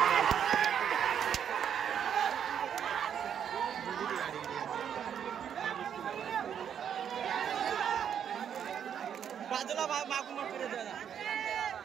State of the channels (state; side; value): quieter; left; 8.6 dB